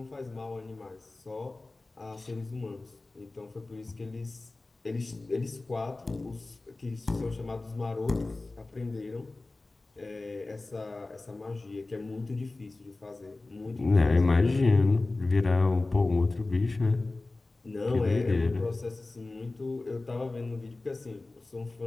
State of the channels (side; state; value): right; quieter; 3.2 dB